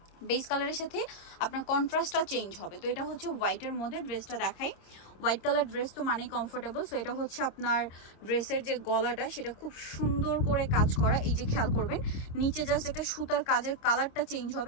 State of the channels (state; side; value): late; right; 26 ms